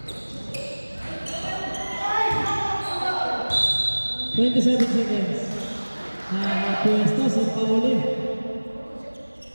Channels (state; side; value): inverted; both; correlation -1.00